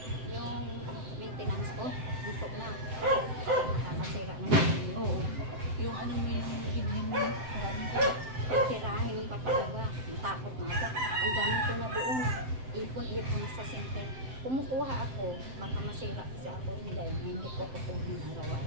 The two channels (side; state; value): left; late; 7.8 ms